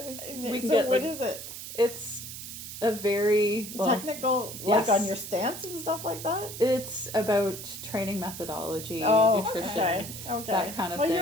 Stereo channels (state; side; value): noise; right; hiss, 10 dB below the sound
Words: is it? It's a very technical, like on your stance and stuff like that. It's about training methodology, nutrition, that kind of thing. Well,